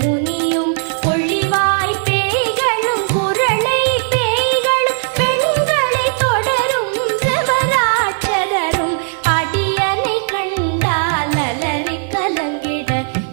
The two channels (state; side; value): silent; left; 64 dB below the other